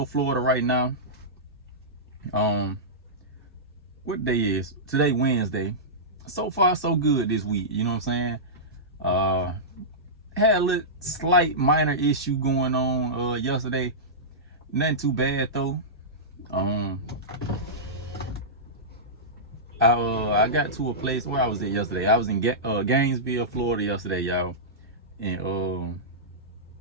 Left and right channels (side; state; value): both; normal; correlation -0.15